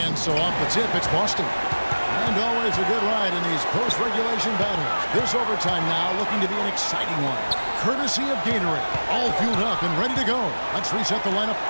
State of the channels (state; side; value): inverted; both; correlation -1.00